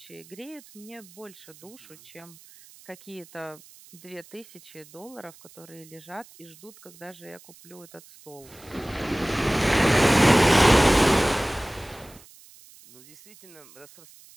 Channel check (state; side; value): noise; right; hiss, 23 dB below the sound